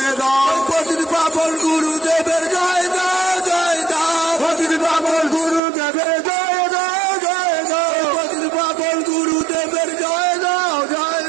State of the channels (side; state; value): left; drops out; at 5.6 s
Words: দাও পতিত পাবন গুরুদেবের জয় দাও জয় দাও পতিত পাবন গুরুদেবের জয় দাও জয় দাও পতিত পাবন গুরুদেবের জয় দাও জয়